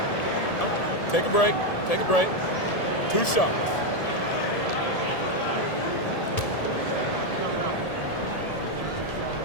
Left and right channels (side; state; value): right; late; 1.7 ms